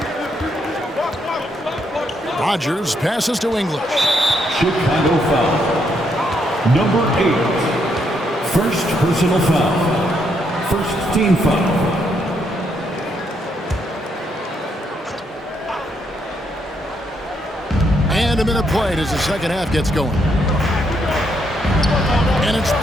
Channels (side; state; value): both; normal; correlation 0.75